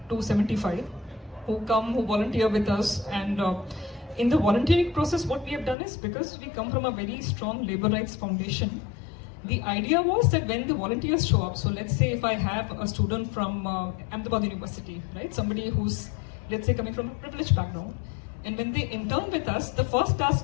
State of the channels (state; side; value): drops out; right; at 5.8 s